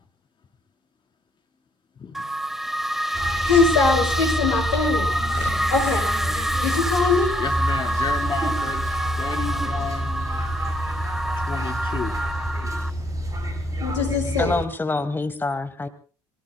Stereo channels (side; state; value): both; normal; correlation 0.69